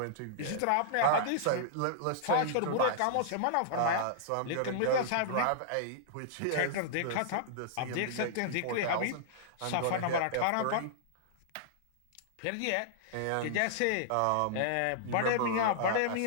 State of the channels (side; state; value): both; different; correlation -0.01